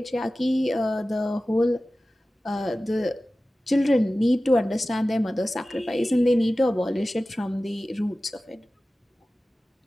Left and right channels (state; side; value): normal; both; correlation 0.96